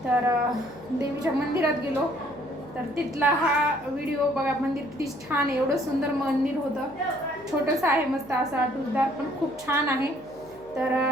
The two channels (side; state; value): left; noise; hum, 25 dB below the sound